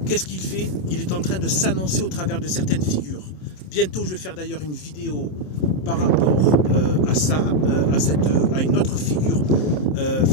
qu'est-ce qu'il fait? Il est en train de s'annoncer au travers de certaines figures. Bientôt, je vais faire d'ailleurs une vidéo par rapport à ça, à une autre figure,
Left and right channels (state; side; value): late; right; 27 ms